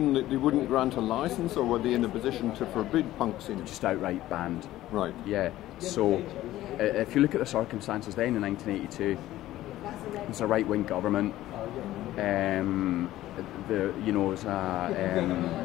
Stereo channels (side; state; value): right; quieter; 14.9 dB